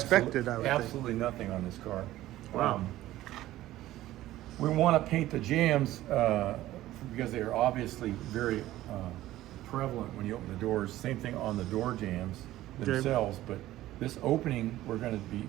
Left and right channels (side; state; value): left; quieter; 15.2 dB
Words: expected, I would think. absolutely nothing on this car. Wow. We want to paint the jams because they are obviously very prevalent when you open the doors. Same thing on the door jams themselves, but this opening we're going to be